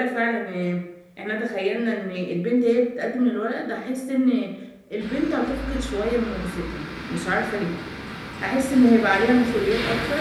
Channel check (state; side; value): identical; both; correlation 1.00